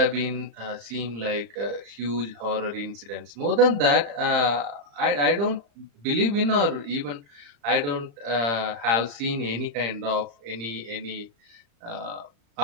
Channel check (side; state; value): left; late; 35 ms